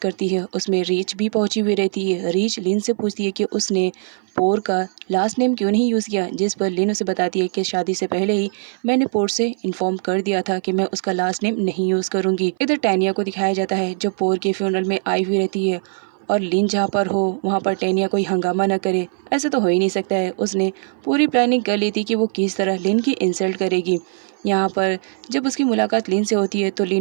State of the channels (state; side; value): silent; left; 59 dB below the other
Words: है। उसमें रीच भी पहुंची हुई रहती है। रीच लिन से पूछती है कि उसने पोर का लास्ट नेम क्यों नहीं यूज़ किया, जिस पर लिन उसे बताती है कि शादी से पहले ही मैंने पोर से इन्फॉर्म कर दिया था कि मैं उसका लास्ट नेम नहीं यूज़ करूँगी। इधर टैनिया को दिखाया जाता है जो पोर के फ्यूनरल में आई हुई रहती है और लिन जहाँ पर हो वहाँ पर टैनिया कोई हंगामा न करे। ऐसा तो हो ही नहीं सकता है। उसने पूरी प्लानिंग कर ली थी कि वो किस तरह लिन की इंसल्ट करेगी। यहाँ पर जब उसकी मुलाकात लिन से होती है तो